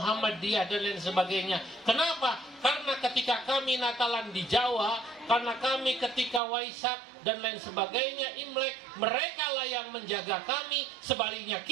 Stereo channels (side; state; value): left; drops out; at 6.4 s